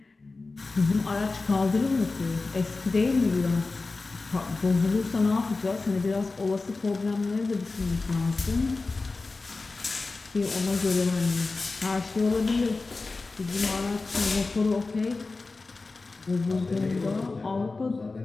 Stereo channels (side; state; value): right; quieter; 3.7 dB